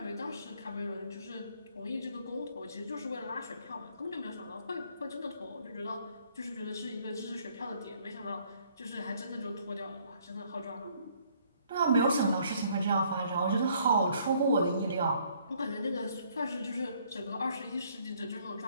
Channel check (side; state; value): both; inverted; correlation -0.64